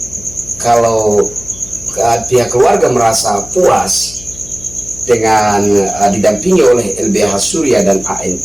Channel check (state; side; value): noise; left; hum, 17 dB below the sound